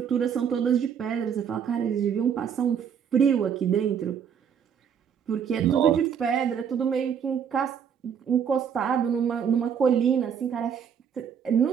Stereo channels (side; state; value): left; quieter; 7.7 dB